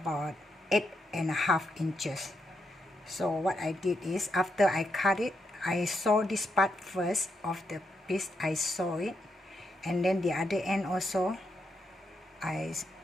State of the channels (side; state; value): both; normal; correlation 0.81